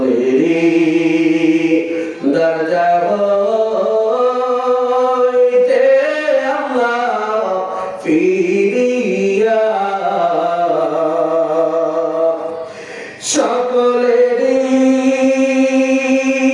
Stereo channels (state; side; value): identical; both; correlation 1.00